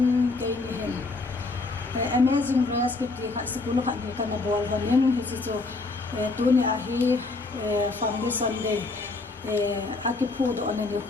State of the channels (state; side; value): quieter; right; 3.5 dB